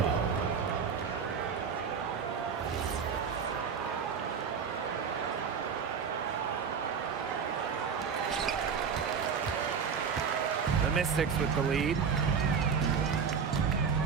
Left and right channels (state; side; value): quieter; left; 6.4 dB